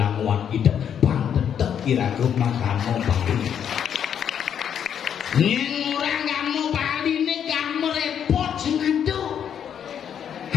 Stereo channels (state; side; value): quieter; right; 8.6 dB